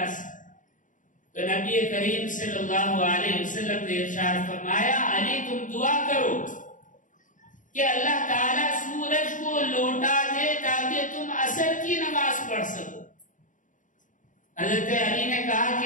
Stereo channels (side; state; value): right; late; 0.37 ms